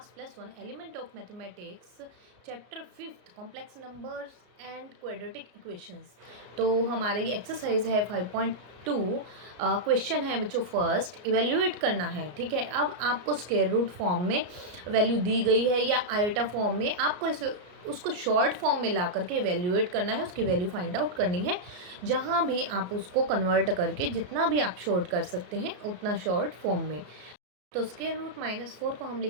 +1 element of mathematics chapter 5 complex numbers and quadratic equations. तो हमारी एक्सरसाइज है 5.2। क्वेश्चन है बच्चों फर्स्ट, इवेल्युएट करना है। ठीक है, अब आपको स्क्वायर रूट फॉर्म में वैल्यू दी गई है या आयोटा फॉर्म में, आपको इसे उसको शॉर्ट फॉर्म में ला करके इवेल्युएट करना है, उसकी वैल्यू फाइंड आउट करनी है। जहाँ भी आप उसको कन्वर्ट करके जितना भी आप शॉर्ट कर सकते हैं उतना शॉर्ट फॉर्म में। तो स्क्वायर रूट -4 को हम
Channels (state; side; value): late; left; 34 ms